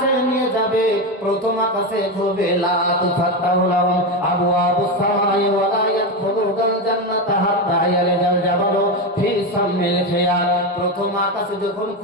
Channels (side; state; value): both; normal; correlation 0.14